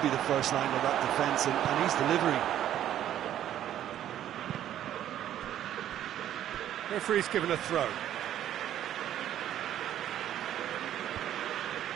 be the first line of that defence, and he's delivering. Referee's given a throw.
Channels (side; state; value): left; quieter; 11.4 dB